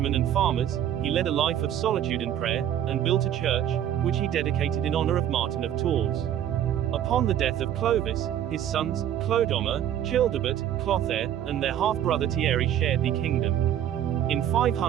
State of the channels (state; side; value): quieter; left; 10.7 dB